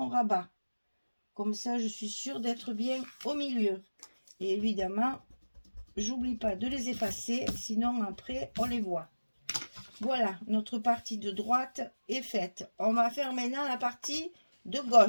rabat. Comme ça, je suis sûre d'être bien au milieu. Et évidemment, j'oublie pas de les effacer, sinon après, on les voit. Voilà, notre partie de droite est faite. On va faire maintenant la partie de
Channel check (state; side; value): inverted; both; correlation -1.00